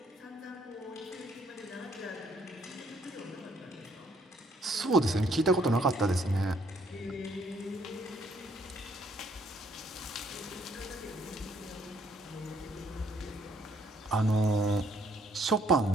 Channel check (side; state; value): both; normal; correlation 0.66